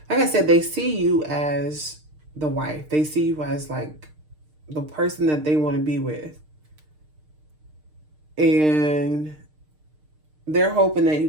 like I said, they see you as the wife. They see you as like the person that they want to be with. And they're hoping that you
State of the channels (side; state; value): left; late; 6.6 ms